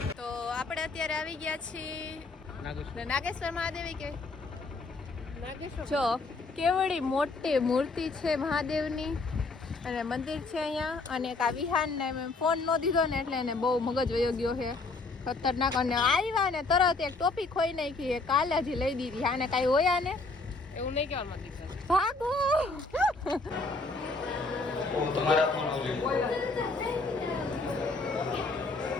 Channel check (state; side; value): quieter; right; 3.5 dB